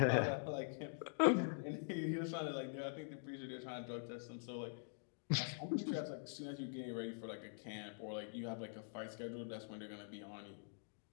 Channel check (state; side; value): silent; right; digital silence